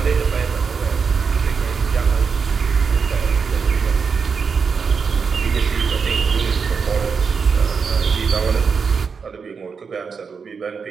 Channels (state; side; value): quieter; left; 5.7 dB